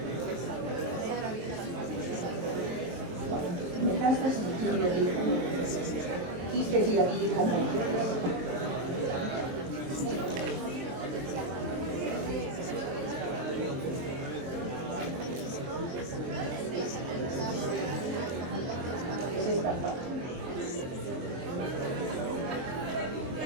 Metástasis. quistes y aquí como quistes. Es esta parte.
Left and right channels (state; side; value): late; left; 23 ms